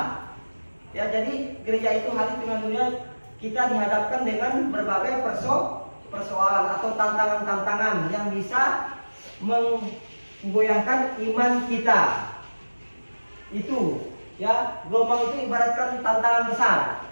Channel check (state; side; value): inverted; both; correlation -1.00